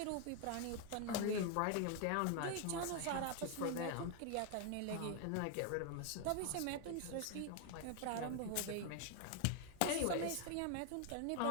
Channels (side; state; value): both; different; correlation 0.01